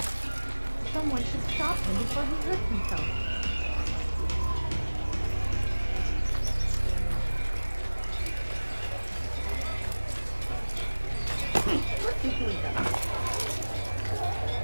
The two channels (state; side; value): inverted; both; correlation -1.00